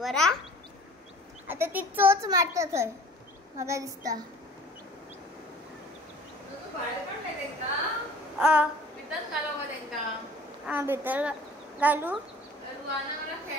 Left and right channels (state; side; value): normal; both; correlation 0.47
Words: हा. आता ती चोच मारता थंय म्हाका दिसता. भितर घालू